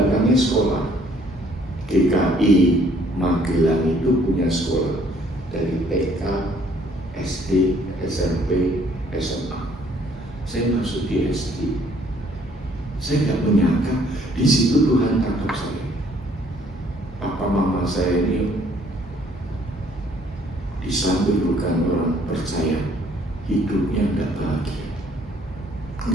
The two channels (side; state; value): both; normal; correlation 0.62